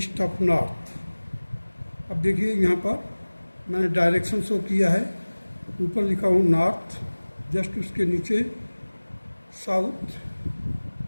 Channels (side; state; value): both; inverted; correlation -1.00